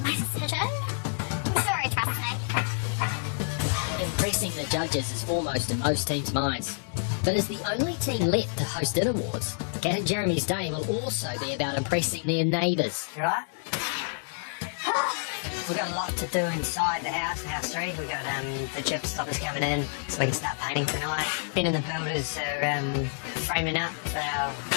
my decision. I'm sure he trusts me. Impressing the judges is foremost in most teams' minds. But as the only team left to host It Awards, Kat and Jeremy's day will also be about impressing their neighbours. You right? We've got a lot to do inside the house, house 3. We've got the chip stoppers coming in so we can start painting tonight. Ben and the builders are framing up for our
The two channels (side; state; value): right; silent; digital silence